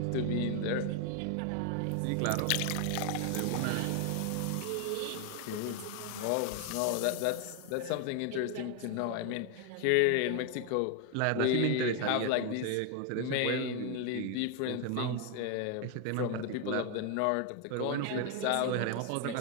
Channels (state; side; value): different; both; correlation 0.00